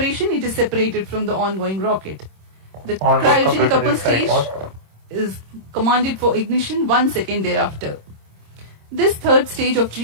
it is separated from the ongoing rocket. The cryogenic upper stage is commanded for ignition 1 second thereafter. This third stage of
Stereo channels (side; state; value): left; late; 26 ms